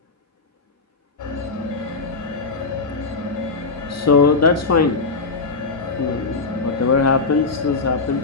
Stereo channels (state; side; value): quieter; right; 4.1 dB